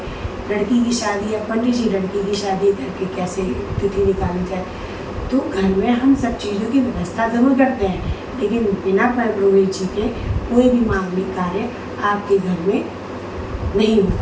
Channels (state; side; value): identical; both; correlation 1.00